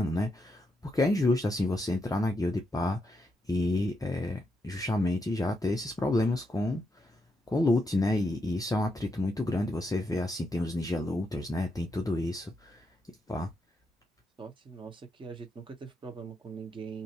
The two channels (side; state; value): both; normal; correlation 0.82